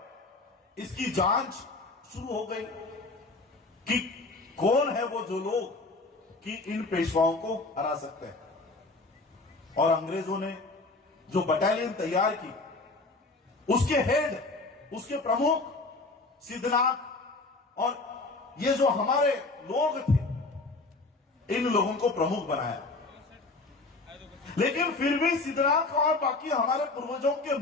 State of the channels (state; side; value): quieter; right; 3.4 dB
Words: इसकी जांच शुरू हो गई कि कौन है वो जो लोग कि इन पेशवाओं को हरा सकते हैं। और अंग्रेजों ने जो बटालियन तैयार की, उसके हेड, उसके प्रमुख सिद्धनाथ और ये जो हमारे लोग थे, इन लोगों को प्रमुख बनाया। लेकिन फिर भी सिद्धनाथ और बाकी हमारे पूर्वजों के